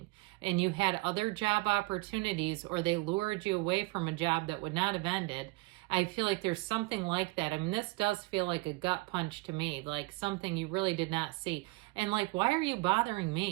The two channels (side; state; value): left; quieter; 24.1 dB